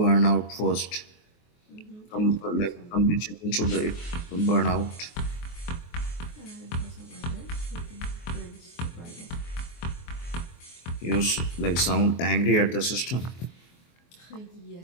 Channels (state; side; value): late; right; 23 ms